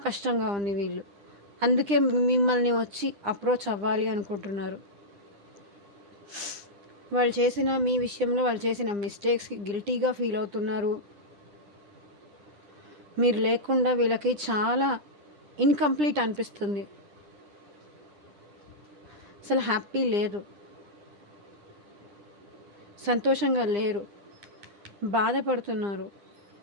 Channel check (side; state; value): left; late; 9.9 ms